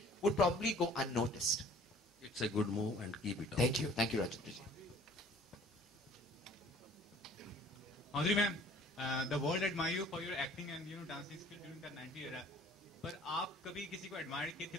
would probably go unnoticed. It's a good move and keep it up. Thank you, Rajendra ji. Madhuri ma'am, the world admire you for your acting and dancing skill during the 90s era. पर आप कभी किसी को admire किए थे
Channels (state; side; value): normal; both; correlation 0.52